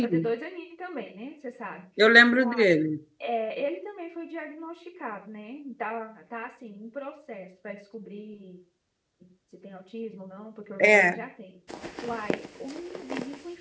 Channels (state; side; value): identical; both; correlation 1.00